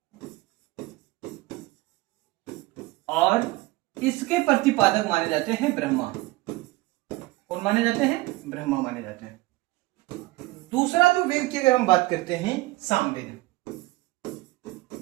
और इसके प्रतिपादक माने जाते हैं ब्रह्मा। कौन माने जाते हैं? ब्रह्मा माने जाते हैं। दूसरा जो वेद की अगर हम बात करते हैं सामवेद।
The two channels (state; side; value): quieter; left; 20.5 dB